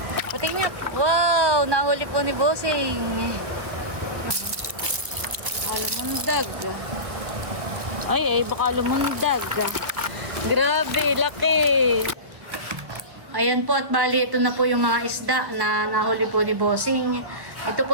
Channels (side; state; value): left; late; 1.5 ms